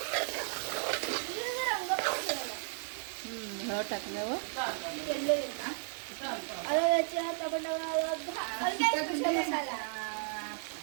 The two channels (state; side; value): silent; left; 55 dB below the other